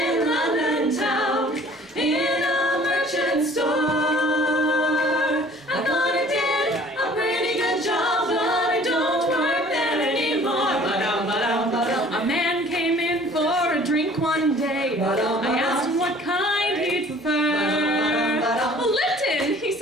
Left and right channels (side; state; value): both; normal; correlation 0.52